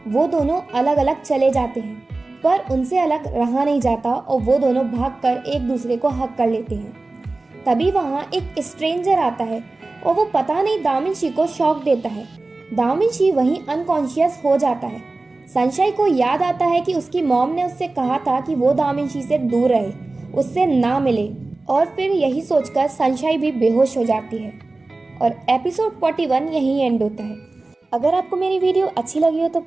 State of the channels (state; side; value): quieter; left; 3.2 dB